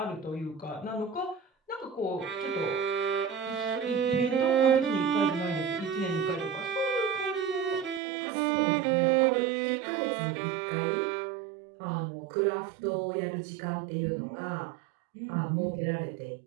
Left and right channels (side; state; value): left; drops out; at 8.0 s